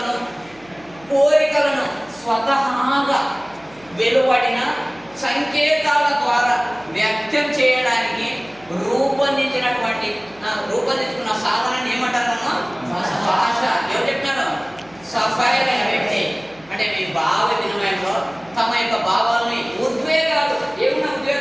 కోరికలను స్వతహాగా వెలువడిన సంకేతాల ద్వారా వ్యక్తం చేయడానికి రూపొందించుకున్న సాధనాన్ని ఏమంటారమ్మా? భాష. ఎవరు చెప్పినారు? సఫైర్ అనే వ్యక్తి అంటే మీ భావ వినిమయంలో తమ యొక్క భావాలని ఉద్వేగాలు, ఏమున్నా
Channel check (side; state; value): right; noise; hum, 27 dB below the sound